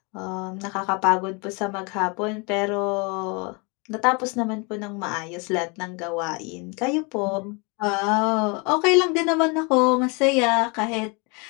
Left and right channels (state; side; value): quieter; right; 31.0 dB